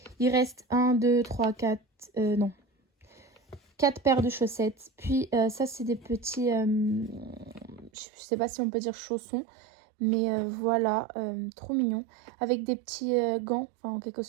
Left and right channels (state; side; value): drops out; left; at 7.9 s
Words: il reste 1, 2, 3, 4, non, 4 paires de chaussettes. Puis ça, c'est des petits, je sais pas si on peut dire chaussons, mais voilà, trop mignon. Avec des petits gants, enfin en quelque